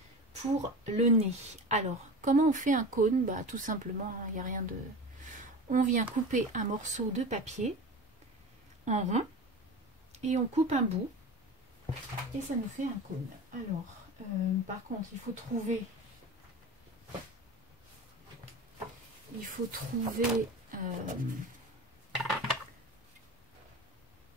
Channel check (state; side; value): normal; both; correlation 0.31